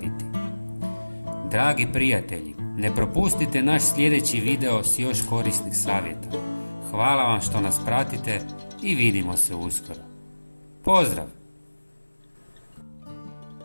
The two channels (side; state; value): both; inverted; correlation -1.00